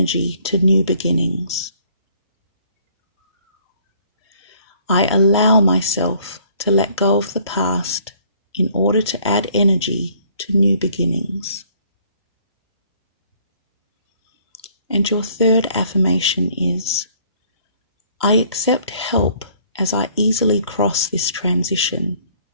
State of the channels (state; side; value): inverted; both; correlation -0.60